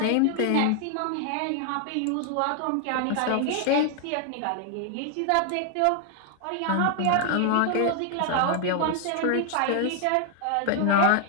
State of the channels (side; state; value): both; different; correlation 0.00